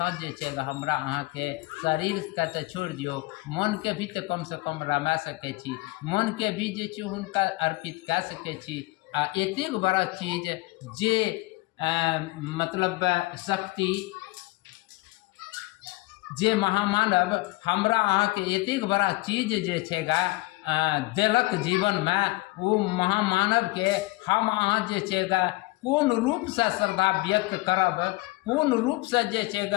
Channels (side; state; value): right; quieter; 22.5 dB